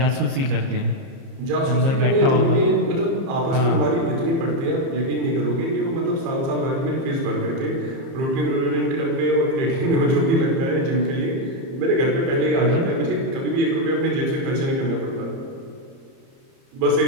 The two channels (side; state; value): left; late; 30 ms